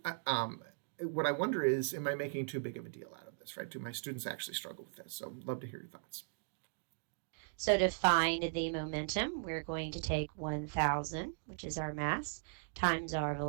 what I wonder is, am I making too big of a deal out of this, right? Do my students actually struggle with this? So, love to hear your thoughts. So to find the momentum, we're going to take 1,000, which is our mass, times our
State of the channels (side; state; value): left; silent; digital silence